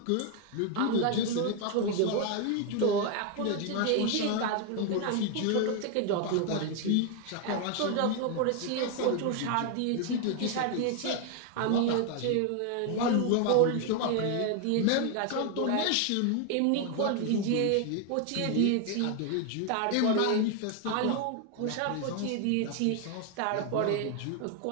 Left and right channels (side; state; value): both; different; correlation 0.01